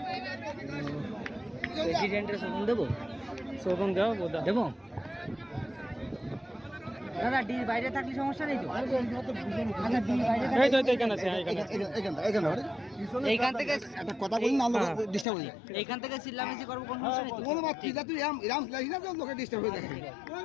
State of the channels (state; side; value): drops out; right; at 15.2 s